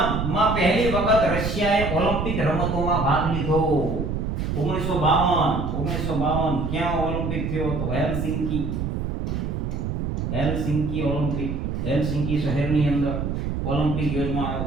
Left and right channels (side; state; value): right; noise; rumble, 2 dB below the sound